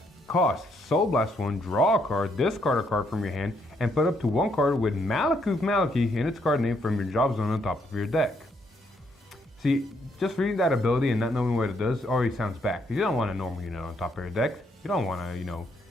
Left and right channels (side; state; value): both; normal; correlation 0.73